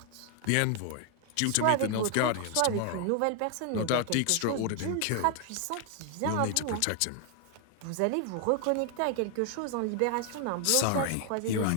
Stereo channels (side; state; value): both; different; correlation 0.00